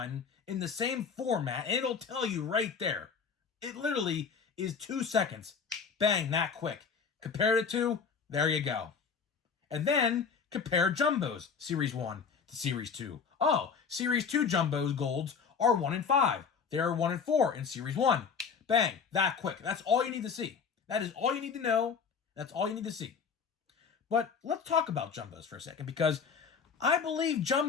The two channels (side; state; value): right; quieter; 6.0 dB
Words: in the same format, and it'll tell you right there. It literally is 2 seconds. Bang, that quick. Compare it to, there you go. And then compare jumbos, Series 1 to Series 2. Oh, Series 2 jumbos golds are 1 in 5. They are 1 in 4 in Series 1. Bang, that quick. That's all you need to see. That is all you need to know. That's all you need to see. But let's talk about jumbos for a second, because I believe